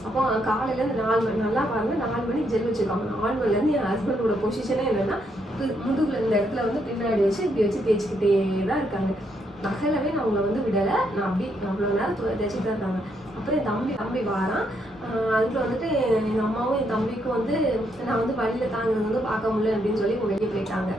அப்போ காலையிலேருந்து 4 மணி நல்லா பாருங்க, 4 மணிக்கு ஜெல் வச்சுருக்காங்க. 4 மணிலேருந்து என் ஹஸ்பண்டோட பொசிஷனே என்னென்னா முதுகுல இந்த இடத்துல வந்து பின்னாடி வச்சு இப்படி வச்சு தேய்ச்சிக்கிட்டே தான் இருக்காங்க. நகலவே நான் அவங்கள வந்து விடலை. நான் அப்படி அவ்வளோ நேரம் தேய்ச்சிட்டு தான் இருக்காங்க. அப்புறம் என் தம்பி வாரான். அதுக்குள்ள வந்துட்டு எங்கள் அம்மாவும் என் தம்பிக்கும் வந்து நான் வந்து வழியில் தாங்கிறது வந்து பார்க்க முடியல அப்படின்னு சொல்லி வெளியே போயிட்டாங்க.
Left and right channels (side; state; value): both; normal; correlation 0.76